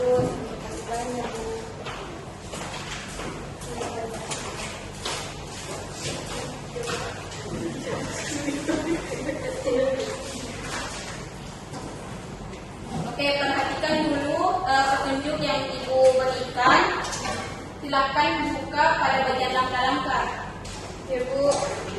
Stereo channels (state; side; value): identical; both; correlation 1.00